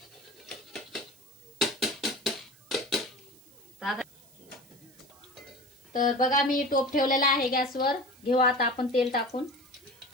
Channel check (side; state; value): right; noise; hiss, 26 dB below the sound